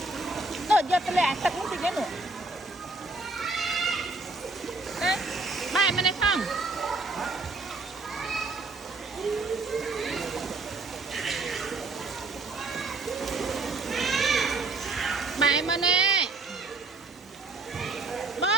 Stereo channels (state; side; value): quieter; left; 3.4 dB